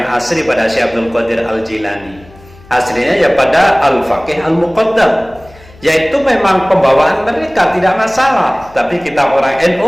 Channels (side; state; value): left; noise; hum, 24 dB below the sound